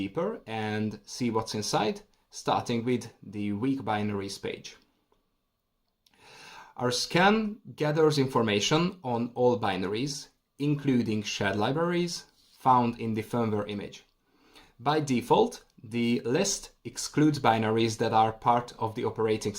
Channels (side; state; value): both; identical; correlation 1.00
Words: and see what's inside, starting with the weak binaries page. Our scan gathers information on all binaries, including shared libraries, found in the firmware image. By default, the list excludes binaries that are part of the operating